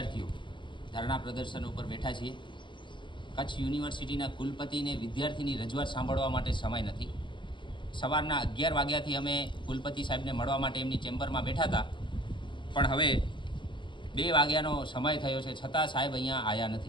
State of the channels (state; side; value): late; right; 0.23 ms